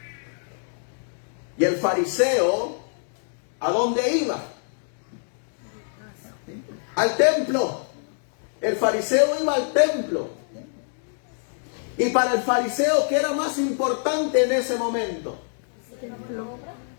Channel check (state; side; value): silent; right; digital silence